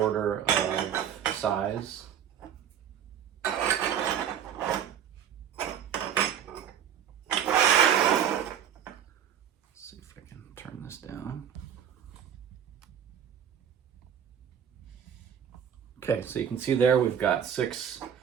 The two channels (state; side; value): quieter; left; 8.9 dB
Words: of size. Let's see if I can turn this down. Okay, so you can see there we've got 6